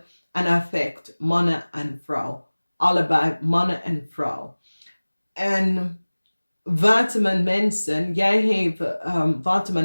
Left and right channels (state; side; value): inverted; both; correlation -1.00